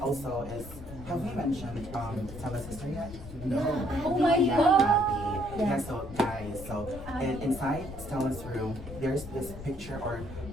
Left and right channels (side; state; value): left; noise; rumble, 13 dB below the sound